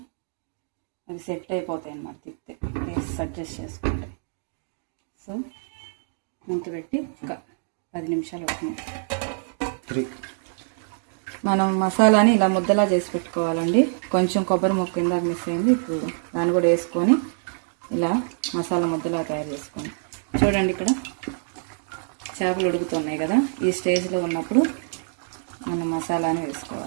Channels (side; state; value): left; silent; digital silence